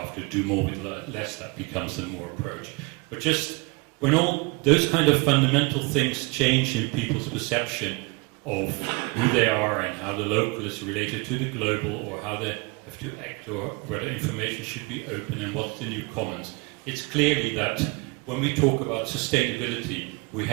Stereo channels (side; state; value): left; quieter; 28.2 dB